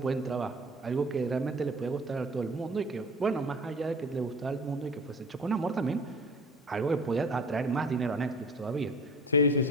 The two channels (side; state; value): both; normal; correlation 0.43